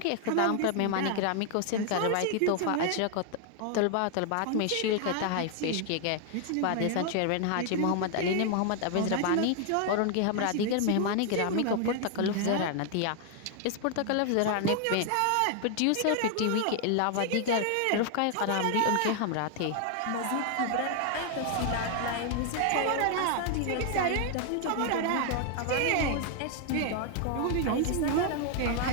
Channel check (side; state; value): both; different; correlation 0.00